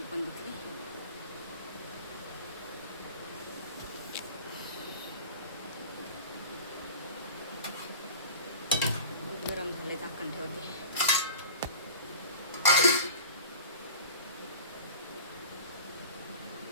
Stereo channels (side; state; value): both; inverted; correlation -0.38